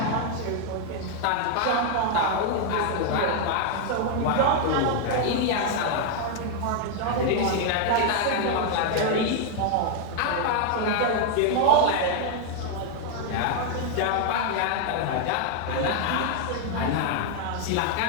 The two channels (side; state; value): both; different; correlation 0.00